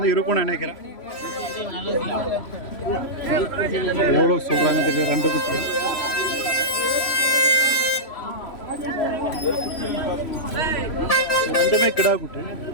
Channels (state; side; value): late; right; 3.0 ms